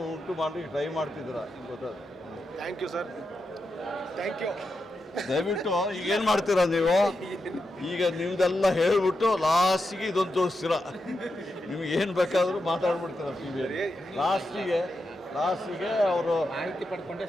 ಉಂಟು ಮಾಡಿ ಟ್ರೈ ಮಾಡ್ತಿದ್ದೀರಾ. ಗೊತ್ತಾದ? Thank you sir, thank you. ದಯವಿಟ್ಟು ಈಗ ಏನು ಮಾಡ್ತೀರಾ ನೀವು? ಈಗ ನಿಮ್ದೆಲ್ಲ ಹೇಳ್ಬಿಟ್ಟು ಲಾಸ್ಟಿಗೆ ಇದೊಂದು ತೋರಿಸ್ತೀರ. ನಿಮ್ಗೆ ಏನು ಬೇಕಾದರೂ ಮಾತಾಡ್ಬಿಡ್ತೀರ TV. ಲಾಸ್ಟಿಗೆ ಅವರು ಮಾಹಿತಿ ಪಡ್ಕೊಂಡೆ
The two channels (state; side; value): normal; both; correlation 0.87